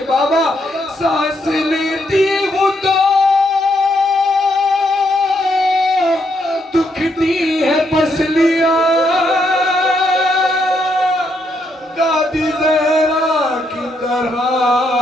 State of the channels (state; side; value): normal; both; correlation 0.76